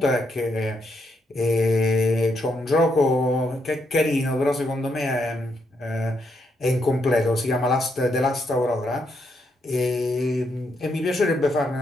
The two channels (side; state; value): both; normal; correlation 0.78